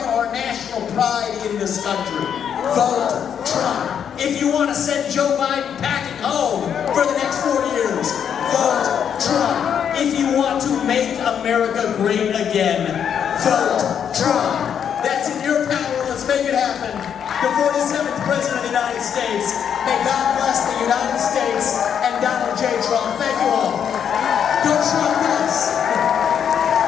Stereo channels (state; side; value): quieter; right; 8.2 dB